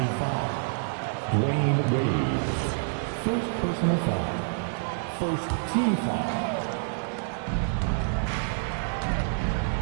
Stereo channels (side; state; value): left; silent; digital silence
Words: foul. Dwayne Wade. First personal foul. First team foul.